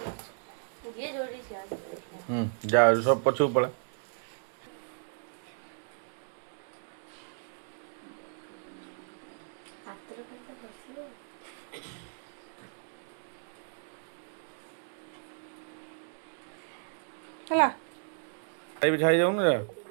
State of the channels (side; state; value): left; silent; digital silence